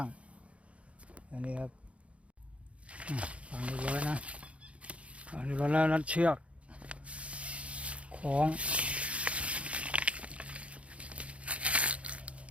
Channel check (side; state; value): left; late; 0.062 ms